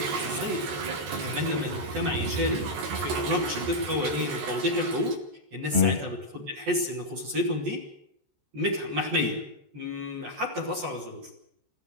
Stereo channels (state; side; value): late; left; 14 ms